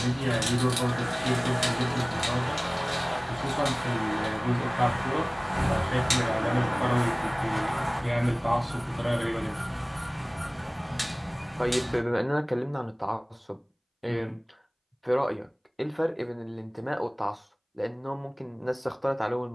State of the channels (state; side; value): identical; both; correlation 1.00